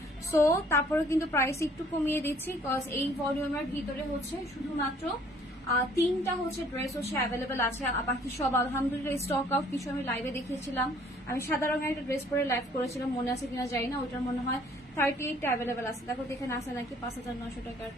সো তারপরে কিন্তু প্রাইস একটু কমিয়ে দিচ্ছি, বিকজ এই ভলিউমের ভিতরে হচ্ছে শুধুমাত্র 3টা হচ্ছে ড্রেস হচ্ছে অ্যাভেলেবেল আছে। বাকি সব আলহামদুলিল্লাহ স্টক আউট। কিছু আমি লাইভে দেখিয়েছিলাম, আমি সাদা রঙের একটা ড্রেস পরে লাইভ করেছিলাম, মনে আছে কিনা জানি না। ওইটার মনে হয় 38টা অ্যাভেলেবেল আছে। দেখো এখানে আছে নাকি 5900 টাকার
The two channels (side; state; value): both; normal; correlation 0.58